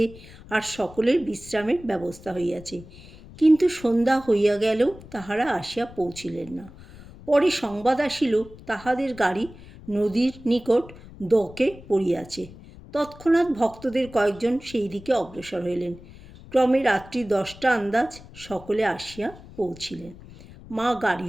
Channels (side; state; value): left; noise; rumble, 19 dB below the sound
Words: আর সকলের বিশ্রামের ব্যবস্থা হইয়াছে। কিন্তু সন্ধ্যা হইয়া গেলেও তাহারা আসিয়া পৌঁছিলেন না। পরে সংবাদ আসিল, তাহাদের গাড়ি নদীর নিকট দকে পড়িয়াছে। তৎক্ষণাৎ ভক্তদের কয়েকজন সেই দিকে অগ্রসর হইলেন। ক্রমে রাত্রি 10টা আন্দাজ সকলে আসিয়া পৌঁছিলেন। মা গাড়ি